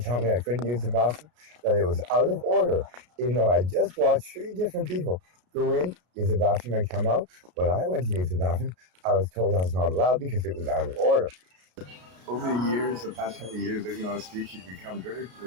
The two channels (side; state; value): left; late; 33 ms